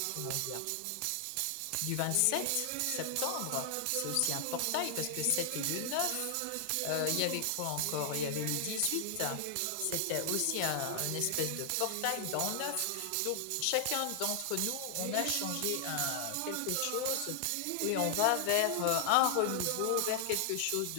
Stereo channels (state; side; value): different; both; correlation 0.00